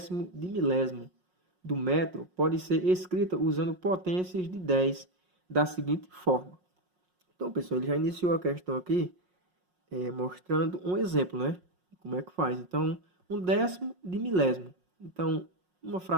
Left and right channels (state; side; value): late; left; 5.5 ms